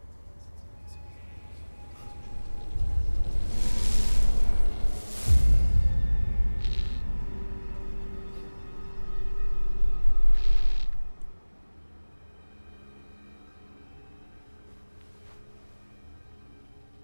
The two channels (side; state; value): both; inverted; correlation -1.00